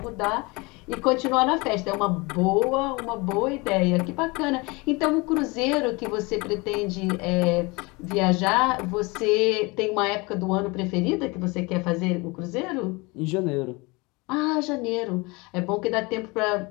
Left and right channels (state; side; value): quieter; right; 25.9 dB